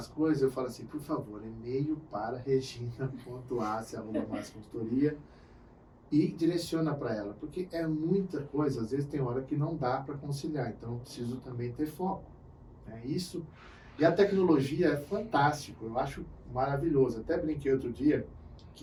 coisas, eu falo assim, por favor, e-mail para regina.assi@masseconsultoria e direciona para ela, porque é muita coisa, às vezes tem hora que não dá para conciliar, então eu preciso também ter foco. Né? Isso, e a tecnologia é fantástico, eu acho maravilhoso. Até brinquei outro dia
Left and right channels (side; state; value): both; identical; correlation 1.00